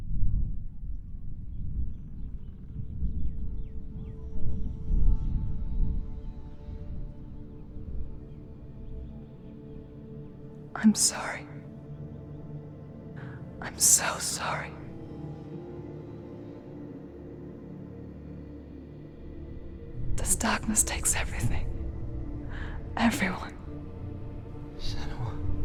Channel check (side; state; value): both; identical; correlation 1.00